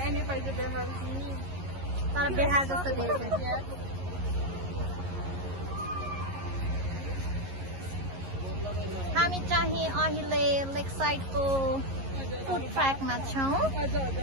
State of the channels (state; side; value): late; left; 11 ms